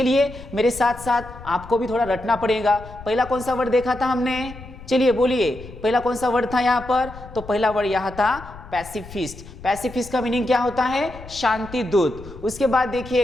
मेरे साथ साथ आपको भी थोड़ा रटना पड़ेगा। पहला कौन सा वर्ड देखा था हमने, चलिए बोलिए, पहला कौन सा वर्ड था यहाँ पर, तो पहला वर्ड यहाँ था पैसिफिस्ट। पैसिफिस्ट का मीनिंग क्या होता है, शांति दूत। उसके बाद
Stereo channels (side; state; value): left; noise; rumble, 16 dB below the sound